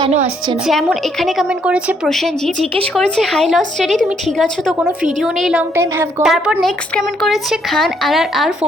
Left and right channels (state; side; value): normal; both; correlation 0.70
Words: আসছে না। যেমন এখানে কমেন্ট করেছে প্রসেনজি, জিজ্ঞেস করেছে হাই লস স্টাডি তুমি ঠিক আছো তো, কোনো ভিডিও নেই, লং টাইম হ্যাভ গন। তারপর নেক্সট কমেন্ট করেছে খান আর